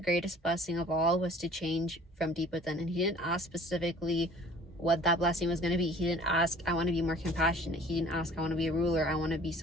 blessing of all, was to change from deep within. And he didn't ask specifically what that blessing was going to be. He didn't ask, I want to be more compassionate. He didn't ask, I want to be a ruler. I want to be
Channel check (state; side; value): normal; both; correlation 0.50